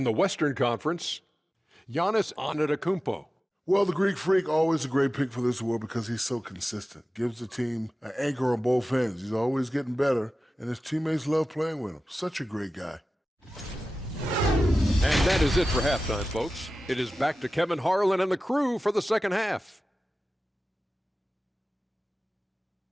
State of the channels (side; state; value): both; normal; correlation 0.95